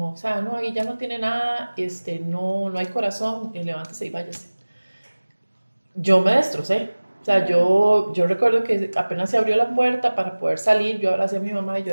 o sea, no, ahí ya no tiene nada, no hay corazón, levántese y váyase. Yo me destrocé, o sea, yo recuerdo que apenas se abrió la puerta para poder salir, yo abracé a mi mamá y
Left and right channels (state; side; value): inverted; both; correlation -1.00